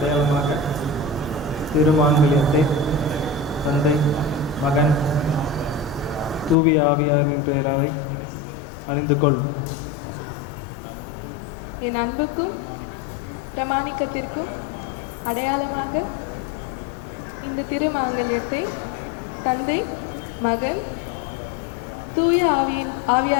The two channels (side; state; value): right; drops out; at 6.6 s